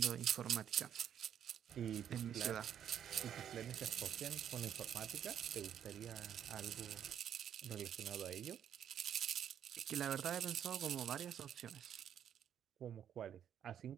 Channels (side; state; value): left; quieter; 9.4 dB